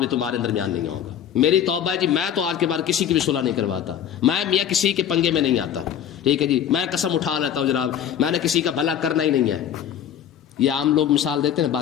تمہارے درمیان نہیں آؤں گا، میری توبہ ہے جی میں تو آج کے بعد کسی کی بھی صلح نہیں کرواتا، میں میاں کسی کے پنگے میں نہیں آتا، ٹھیک ہے جی، میں قسم اٹھا لیتا ہوں جناب میں نے کسی کا بھلا کرنا ہی نہیں ہے۔ یہ عام لوگ مثال دیتے ہیں،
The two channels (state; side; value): quieter; right; 9.5 dB